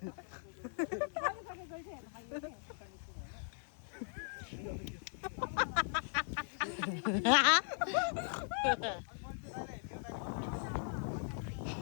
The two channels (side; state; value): right; silent; 52 dB below the other